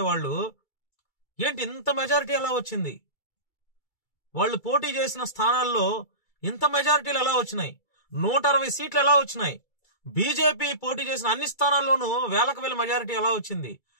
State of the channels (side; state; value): right; late; 2.3 ms